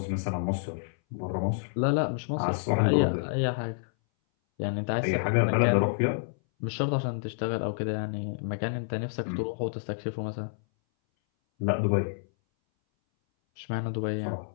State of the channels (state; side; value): silent; right; 59 dB below the other